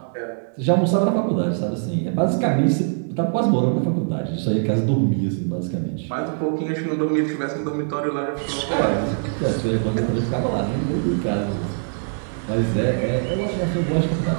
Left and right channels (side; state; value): left; silent; digital silence